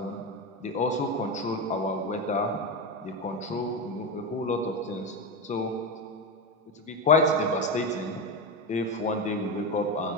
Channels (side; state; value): both; normal; correlation 0.16